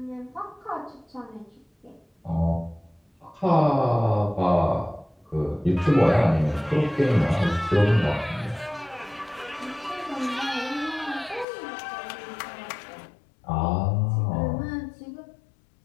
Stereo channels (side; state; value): right; drops out; at 11.5 s